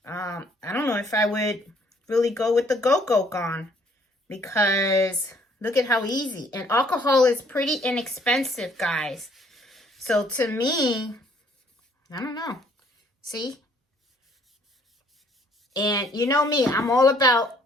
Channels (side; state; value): both; normal; correlation 0.63